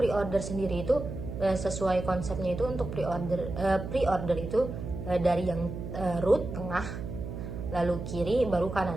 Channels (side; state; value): right; noise; hum, 7 dB below the sound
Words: sendiri itu sesuai konsepnya itu, untuk pre-order itu dari yang root, tengah, lalu kiri, baru